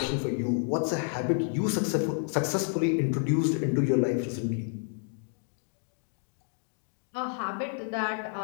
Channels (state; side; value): silent; right; 58 dB below the other